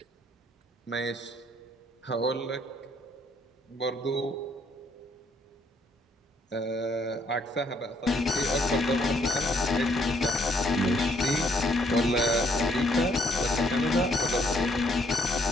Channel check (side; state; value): both; normal; correlation 0.69